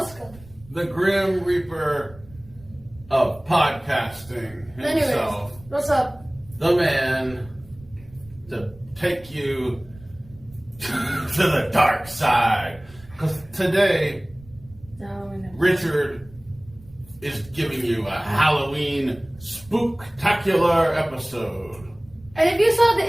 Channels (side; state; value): right; noise; rumble, 22 dB below the sound